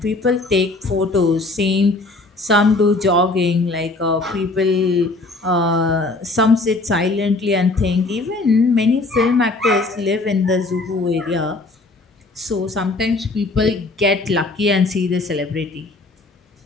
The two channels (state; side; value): quieter; right; 3.2 dB